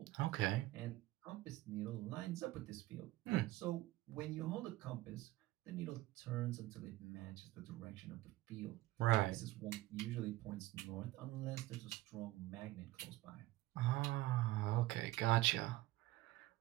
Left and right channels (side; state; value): left; quieter; 17.7 dB